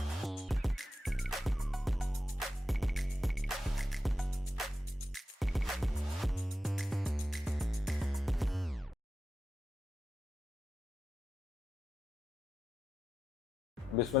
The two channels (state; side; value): normal; both; correlation 0.87